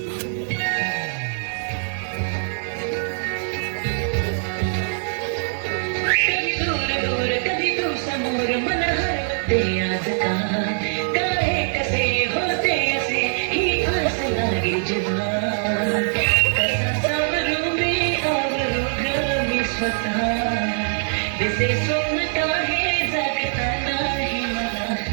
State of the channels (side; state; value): left; silent; 58 dB below the other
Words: कधी दूर दूर कधी तू समोर मन हरवते आज का काय कसे होते असे ही आस लागे जेव्हा कसा सावरू मी आवरू ग मी स्वतः दिसे स्वप्न काही जागता नाही मला